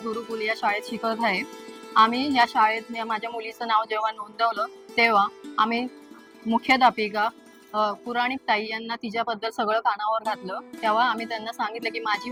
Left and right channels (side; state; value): both; identical; correlation 1.00